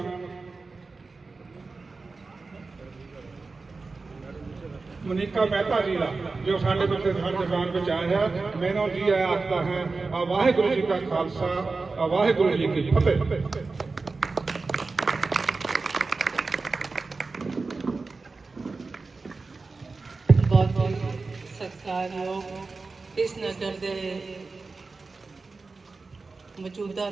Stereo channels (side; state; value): left; quieter; 4.0 dB